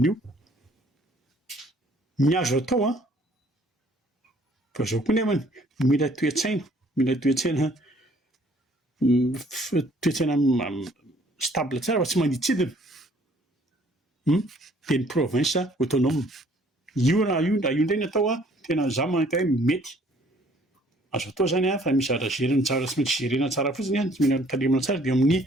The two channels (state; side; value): normal; both; correlation 0.59